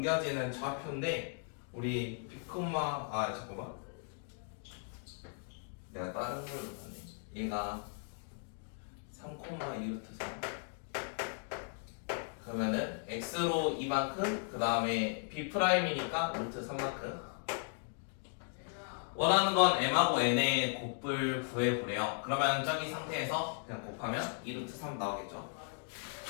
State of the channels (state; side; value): silent; right; 53 dB below the other